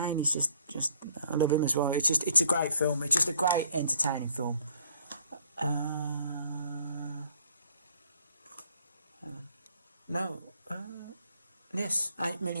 he's just I love him as well. It's a great film. It's just a great entertaining film. No. Yes, 8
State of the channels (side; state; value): both; inverted; correlation -0.61